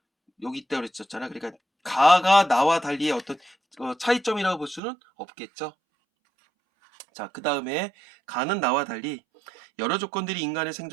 있다 그랬었잖아. 그러니까 가가 나와 달리의 어떤 차이점이라고 볼 수는 없겠죠. 자, 그 다음에 가는 나와 달리 여러 조건들이 인간의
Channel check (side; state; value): left; drops out; at 4.8 s